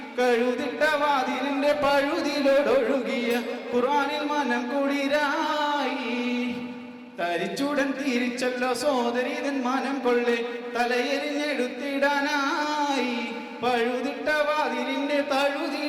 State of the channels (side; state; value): both; identical; correlation 1.00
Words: കഴുതിട്ട വാതിലിന്റെ പഴുതിലോടൊഴുകിയ ഖുർആനിൽ മനം കുളിരായി തരിച്ചുടൻ തിരിച്ചല്ലോ സോദരിതൻ മനം കൊള്ളെ തലയെറിഞ്ഞെടുത്തിടാനായി പഴുതിട്ട വാതിലിന്റെ